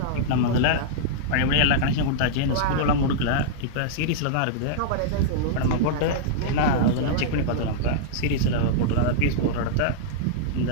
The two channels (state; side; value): different; both; correlation -0.02